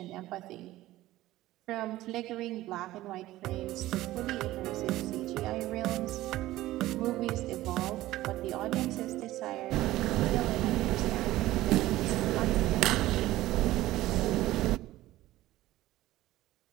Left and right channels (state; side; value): quieter; left; 16.1 dB